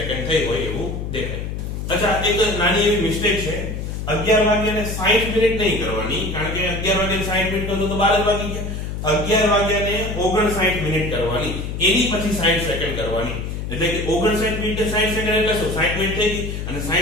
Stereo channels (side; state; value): left; noise; hum, 5 dB below the sound